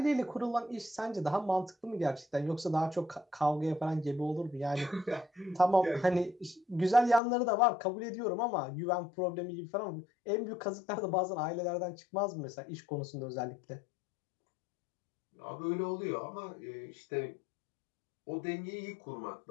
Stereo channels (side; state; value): right; drops out; at 7.2 s